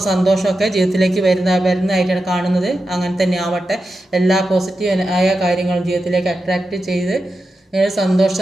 സന്തോഷമൊക്കെ ജീവിതത്തിലേക്ക് വരുന്നതായിട്ടാണ് കാണുന്നത്. അങ്ങനെ തന്നെ ആവട്ടെ. എല്ലാ പോസിറ്റീവ് ആയ കാര്യങ്ങളും ജീവിതത്തിലേക്ക് അട്രാക്റ്റ് ചെയ്ത്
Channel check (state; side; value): normal; both; correlation 0.90